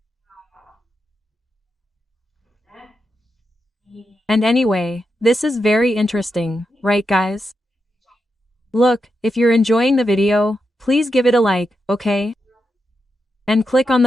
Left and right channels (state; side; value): normal; both; correlation 0.86